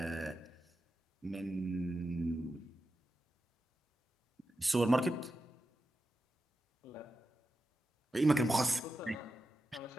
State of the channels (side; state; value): both; normal; correlation 0.90